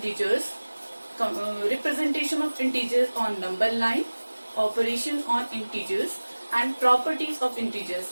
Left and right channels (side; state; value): both; inverted; correlation -1.00